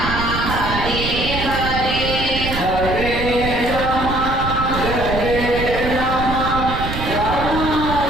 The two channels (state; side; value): noise; right; rumble, 5 dB below the sound